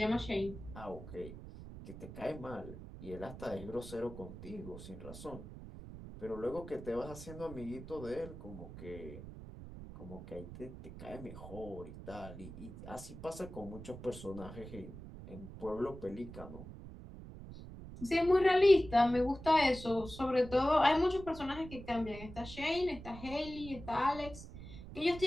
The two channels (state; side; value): noise; right; rumble, 13 dB below the sound